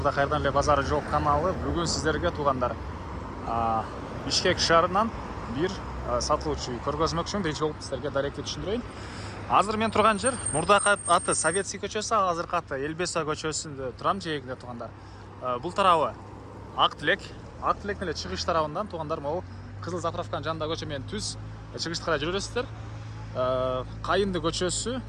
қайырдан эле базары жоқ каналы. Бүгін сіздерге туғандар Бишкек шаарынан бир сатылуучу үй көргөзмөкчүмүн. Биринчи болуп сіздерге даректи түшүндүрөйүн. Азыр мен турган жер мурдакы аты Советский көчөсү, азыркы аты Элбеса көчөсүндө турам, жээгинде туғандар. Бул тарабы Ак Тилек эле чыгыш тарабынан туғандар. Могу Кызыл заправканын жанында көчө менен түз чыгышты карай жүрөсүздөр. Кайынды көчөсү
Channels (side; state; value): both; identical; correlation 1.00